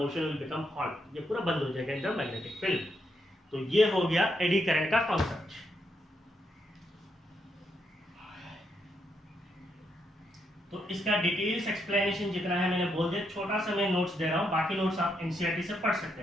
will become halt, ये पूरा बंद हो जाएगा इन द मैग्नेटिक फील्ड। तो ये हो गया एडी करंट का कॉन्सेप्ट। तो इसका डिटेल्स एक्सप्लेनेशन जितना है मैंने बोल दिया, छोटा सा मैं नोट्स दे रहा हूं, बाकी नोट्स आप एनसीईआरटी से पढ़ सकते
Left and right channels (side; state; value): both; normal; correlation 0.79